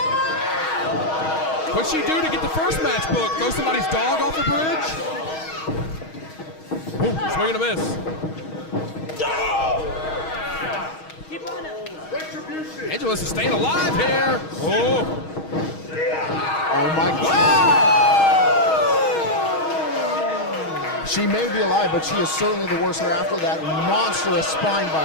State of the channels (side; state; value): right; late; 6.3 ms